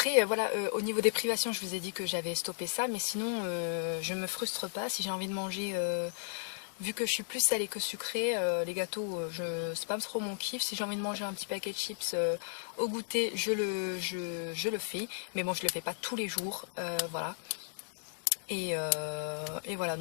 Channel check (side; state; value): right; silent; digital silence